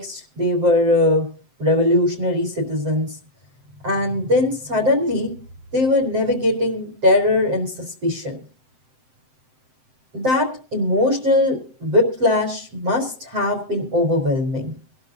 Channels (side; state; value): left; late; 7.8 ms